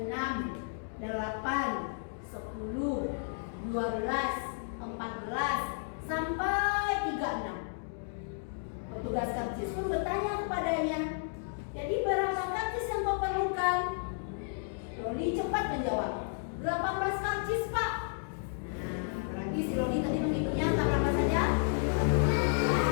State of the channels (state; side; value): silent; right; digital silence